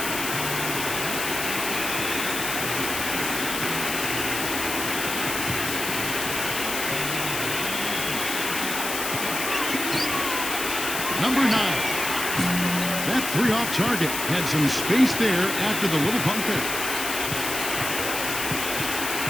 Number 9. That 3 off target had some space there after the little pump fake.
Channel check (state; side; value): noise; left; hiss, 3 dB below the sound